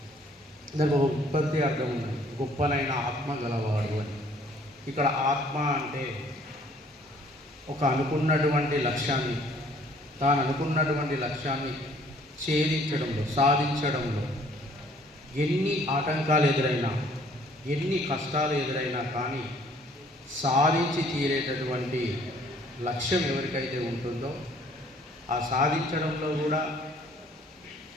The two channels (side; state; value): both; normal; correlation 0.58